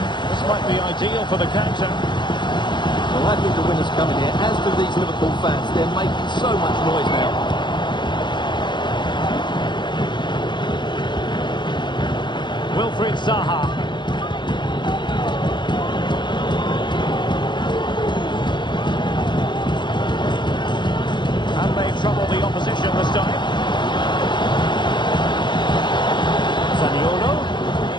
This might be ideal for the counter. Well, I think the winner's coming here, as do these Liverpool fans. They're making so much noise now. Wilfried Zaha. And they trouble the opposition this time.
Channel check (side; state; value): right; late; 0.22 ms